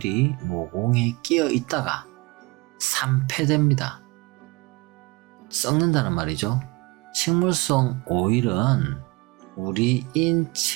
모공에 끼어 있다가 산패됩니다. 썩는다는 말이죠. 식물성 오일은 우리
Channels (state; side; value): quieter; left; 24.5 dB